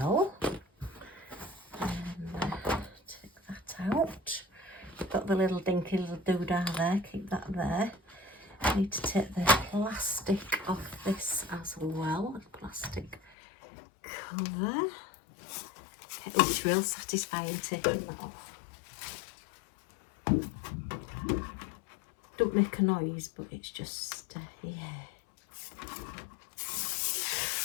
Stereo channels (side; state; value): right; drops out; at 13.4 s